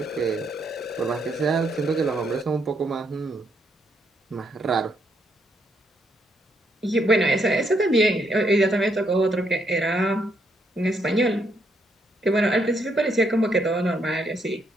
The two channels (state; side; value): normal; both; correlation 0.75